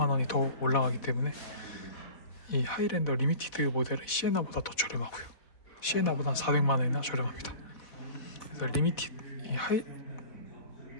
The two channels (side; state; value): right; late; 4.1 ms